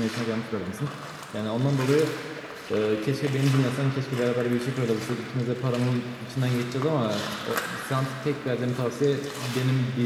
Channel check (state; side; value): identical; both; correlation 1.00